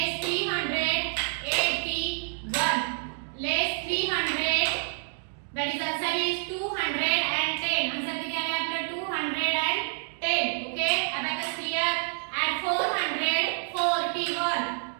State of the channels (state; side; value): silent; left; digital silence